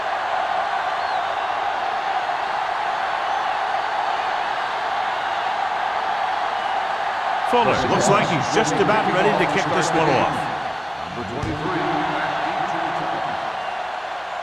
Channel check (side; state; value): both; identical; correlation 1.00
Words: Fuller looks like he's just about ready to kick this one off. Number 23.